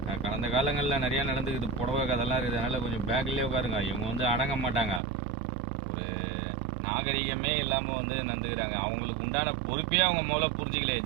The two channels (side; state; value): left; drops out; at 5.0 s